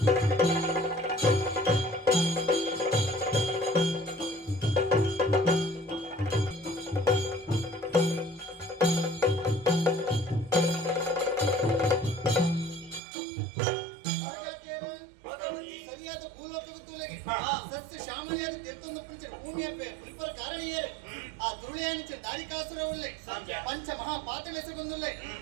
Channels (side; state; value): left; drops out; at 13.0 s